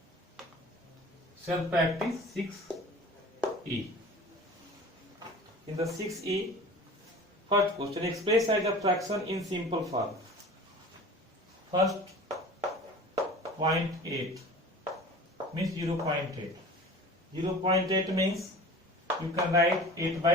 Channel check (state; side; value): normal; both; correlation 0.40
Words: Self practice 6E. In the 6E, first question, express as a fraction in simple form. First 0.8 means 0.8. 0.8 means you can write 8